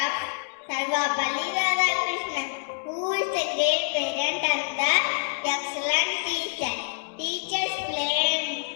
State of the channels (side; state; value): right; silent; digital silence